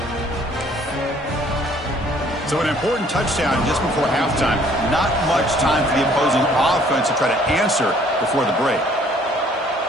So an important touchdown just before halftime. Not much time for the opposing offense to try to answer before the break.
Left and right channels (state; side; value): normal; both; correlation 0.59